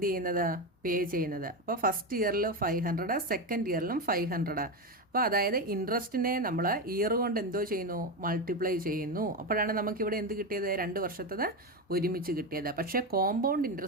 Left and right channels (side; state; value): both; normal; correlation 0.14